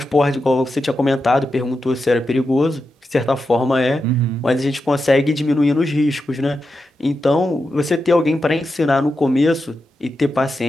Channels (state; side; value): normal; both; correlation 0.88